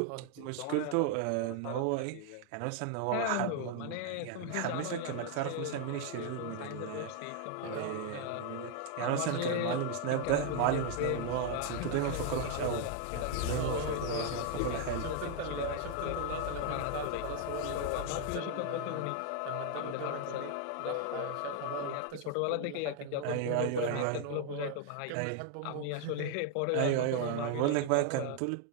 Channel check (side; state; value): both; different; correlation 0.00